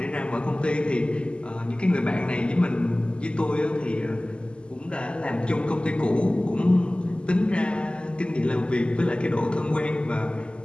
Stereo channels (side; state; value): right; late; 0.051 ms